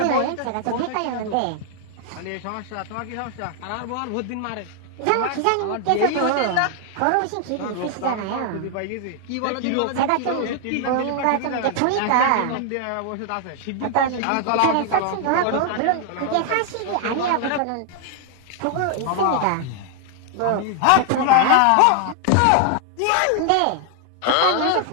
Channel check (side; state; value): both; different; correlation 0.00